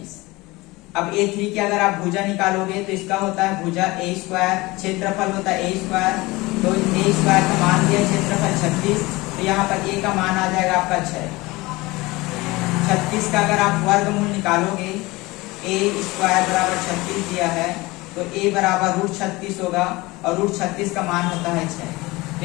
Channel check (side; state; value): right; quieter; 21.7 dB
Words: अब A3 की अगर आप भुजा निकालोगे तो इसका होता है भुजा A², क्षेत्रफल होता है A², तो A² का मान दिया क्षेत्रफल 36, तो यहाँ पर A का मान आ जाएगा आपका 6। 36 का अगर आप वर्गमूल निकालोगे, A² बराबर 36 दिया है, तो A बराबर √36 होगा और √36 का मान होता है 6। तो